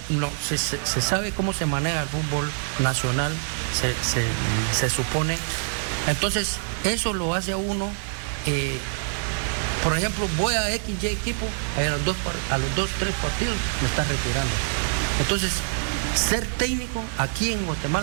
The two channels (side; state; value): left; silent; digital silence